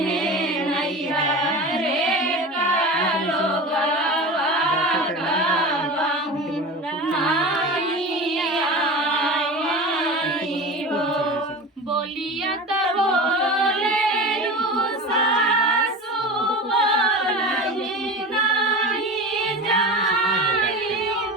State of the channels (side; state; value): both; normal; correlation 0.31